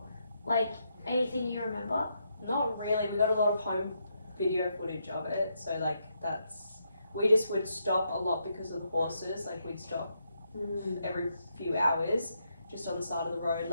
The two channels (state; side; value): inverted; both; correlation -0.79